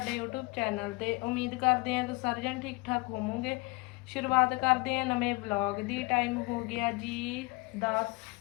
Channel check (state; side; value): quieter; right; 24.9 dB